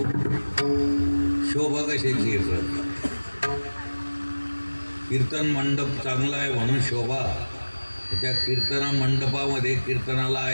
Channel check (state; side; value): inverted; both; correlation -1.00